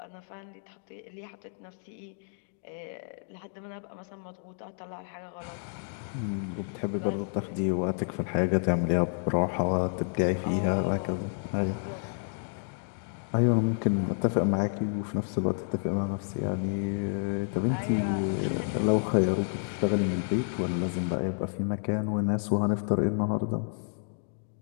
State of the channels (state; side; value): silent; right; 58 dB below the other